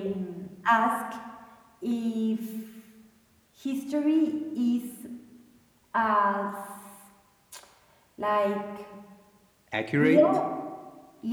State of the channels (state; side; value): identical; both; correlation 1.00